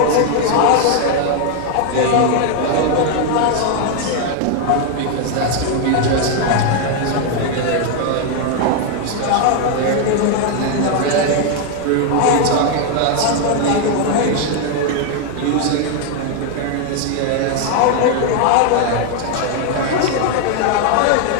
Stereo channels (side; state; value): both; different; correlation 0.00